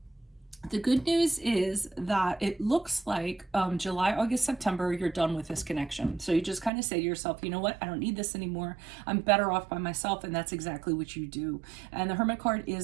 the good news is that it looks like July, August, September, you're done with this connection. So you just kind of say to yourself, you know what, I don't need this anymore. I'm better off by myself. And that's exactly what you do. And the Hermit card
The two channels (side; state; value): left; drops out; at 6.7 s